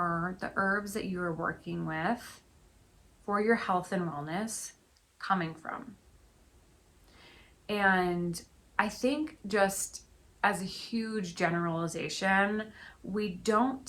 the herbs that you are working with for your health and wellness coming from? And I think, just as a huge generalization, we don't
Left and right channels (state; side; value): identical; both; correlation 1.00